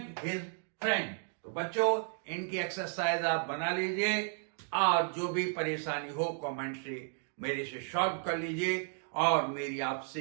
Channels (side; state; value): left; silent; 55 dB below the other